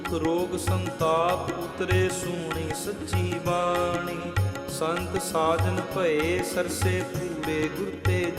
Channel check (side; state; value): both; identical; correlation 1.00